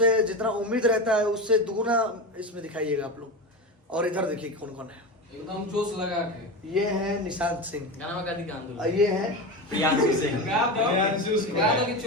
जितना उम्मीद रहता है उससे दुगुना इसमें दिखाइएगा आप लोग। और इधर देखिए कौन कौन है। एकदम जोश लगा के। ये है निशांत सिंह, गाना का दिखान और ये है प्रियांशु सिंह। गा दो कि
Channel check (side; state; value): both; normal; correlation 0.22